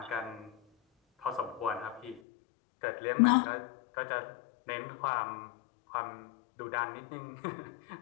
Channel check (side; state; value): right; drops out; at 2.2 s